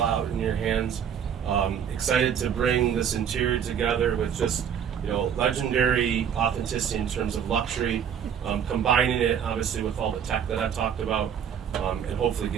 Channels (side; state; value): left; quieter; 8.3 dB